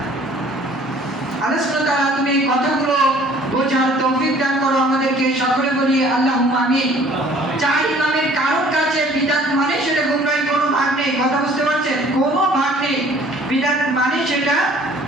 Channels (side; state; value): both; normal; correlation 0.54